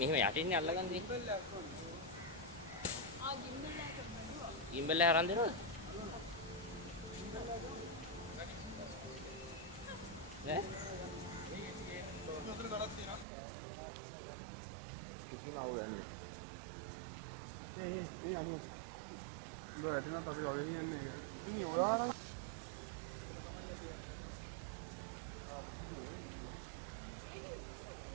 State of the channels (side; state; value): left; drops out; at 13.2 s